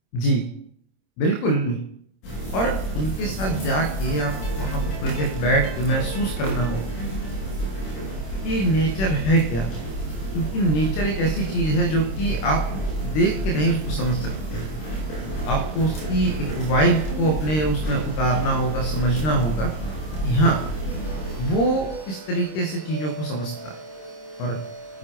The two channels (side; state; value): right; late; 26 ms